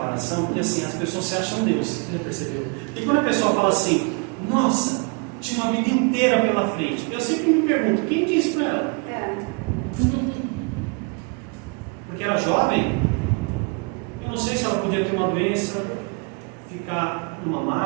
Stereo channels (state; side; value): quieter; left; 34.6 dB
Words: porque assim, as pessoas se acham Deus, você já percebeu? E quando a pessoa fala assim, nossa, tinha uma vida inteira pela frente, eu sempre me pergunto, quem disse para ela? Porque era jovem, eu não sei se ela podia ter uma doença, ficar numa